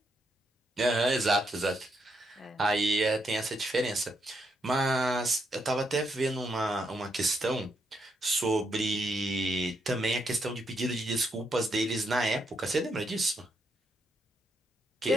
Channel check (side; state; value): both; normal; correlation 0.79